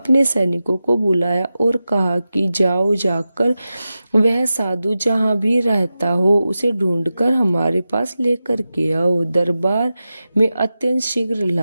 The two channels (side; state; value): both; inverted; correlation -0.93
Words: सैनिकों को बुलाया और कहा कि जाओ, जाकर वह साधु जहाँ भी रहता हो उसे ढूंढकर हमारे पास लेकर के आओ, दरबार में अत्यंत शीघ्र